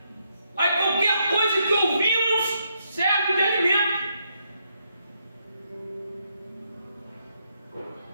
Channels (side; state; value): both; inverted; correlation -0.77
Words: Aí qualquer coisa que ouvimos serve de alimento.